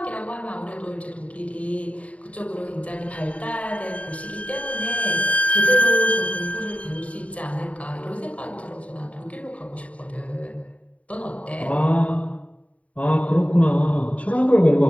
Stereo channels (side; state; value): right; late; 0.066 ms